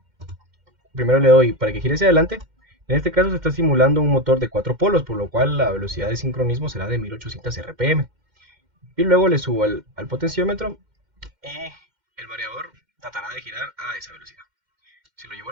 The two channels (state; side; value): late; left; 2.1 ms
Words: primero le doy para que gire hacia adelante. En este caso se está simulando un motor de 4 polos, por lo cual la velocidad de sincronismo será de 1800 RPM. Y luego le subo al potenciómetro y el variador tratará de girar a esa velocidad. Si lo llevo